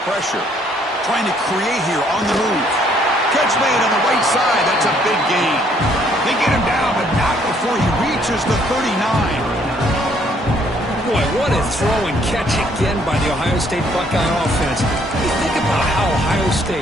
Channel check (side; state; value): both; normal; correlation 0.65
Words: pressure. Trying to create here on the move. Catch made on the right side. That's a big gain. They get him down, but not before he reaches the 39. Boy, what a throw and catch again by the Ohio State Buckeye offense. You think about how Ohio